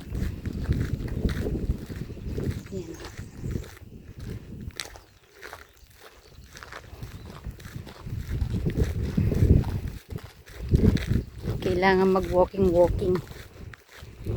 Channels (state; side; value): identical; both; correlation 1.00